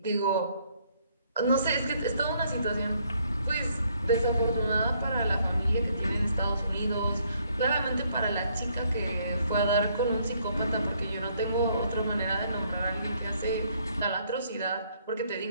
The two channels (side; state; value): both; inverted; correlation -0.68